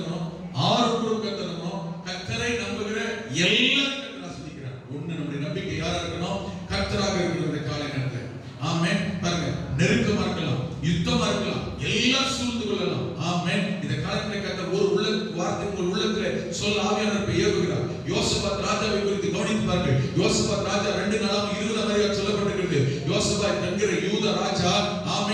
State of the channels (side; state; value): both; identical; correlation 1.00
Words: ஆரோன் குடும்பம் கர்த்தரை நம்பணும், கர்த்தரை நம்புகிற எல்லாரும் கர்த்தரை ஆசீர்வதிக்கிறார். ஒண்ணு நம்முடைய நம்பிக்கை யாரா இருக்கணும்? கர்த்தராக இருக்கிற இந்த காலை நேரத்தில். ஆமென். பாருங்க, நெருக்கமா இருக்கலாம், யுத்தமா இருக்கலாம், எல்லாம் சூழ்ந்து கொள்ளலாம். ஆமென். இந்த காலத்துல கர்த்தர் ஒரு உள்ள வார்த்தை உங்கள் உள்ளத்திலே சொல்ல ஆவியானவர் ஏவுகிறார். யோசபாத் ராஜாவை குறித்து கவனித்து பாருங்கள். யோசபாத் ராஜா 2:20 சொல்லப்பட்டிருக்கிறது. யோசபாத் என்கிற யூத ராஜா,